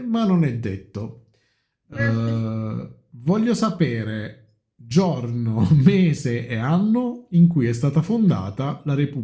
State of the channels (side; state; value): both; identical; correlation 1.00